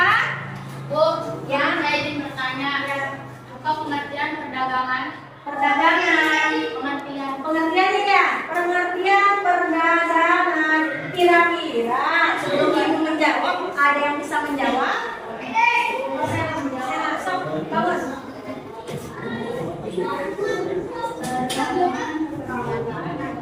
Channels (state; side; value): identical; both; correlation 1.00